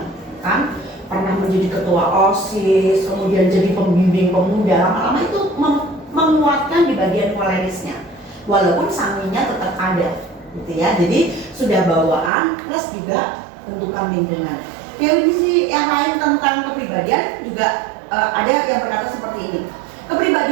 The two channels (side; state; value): left; drops out; at 12.3 s